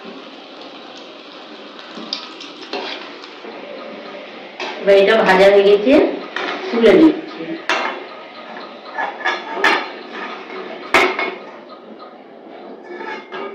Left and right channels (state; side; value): identical; both; correlation 1.00